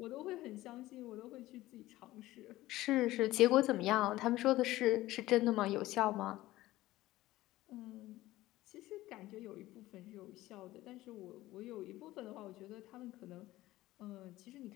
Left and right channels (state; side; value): quieter; right; 16.7 dB